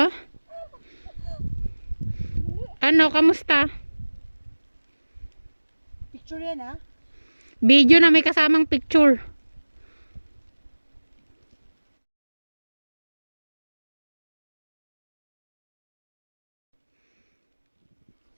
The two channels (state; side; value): inverted; both; correlation -1.00